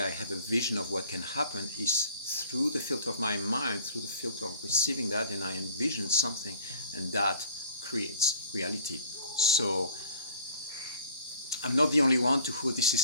have a vision of what can happen. It's through the filter of my mind, through the filter of receiving that, and I envision something, and that creates reality. So I'm not the only one to who this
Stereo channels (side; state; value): both; inverted; correlation -0.50